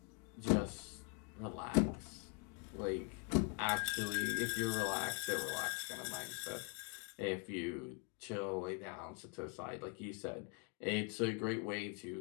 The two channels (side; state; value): right; quieter; 35.8 dB